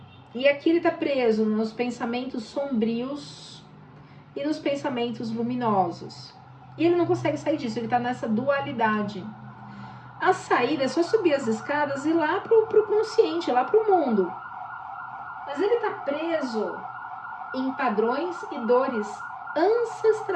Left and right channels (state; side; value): identical; both; correlation 1.00